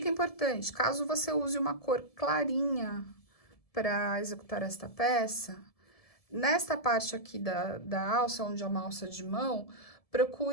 importante, caso você use uma cor clarinha para executar esta peça, nesta parte aqui da alça, onde é uma alça de mão,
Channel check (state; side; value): late; right; 1.7 ms